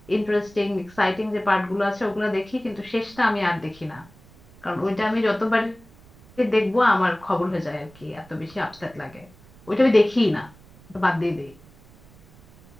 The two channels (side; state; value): right; noise; rumble, 25 dB below the sound